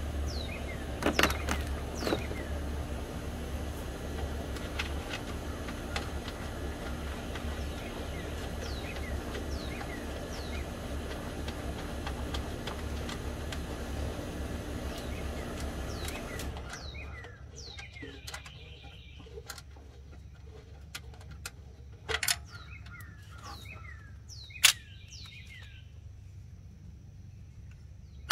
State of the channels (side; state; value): both; identical; correlation 1.00